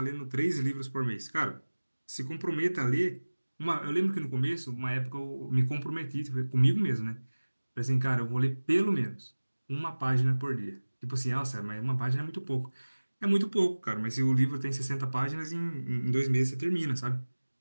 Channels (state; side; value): inverted; both; correlation -1.00